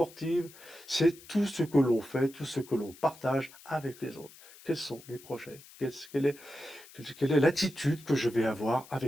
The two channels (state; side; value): noise; left; hiss, 21 dB below the sound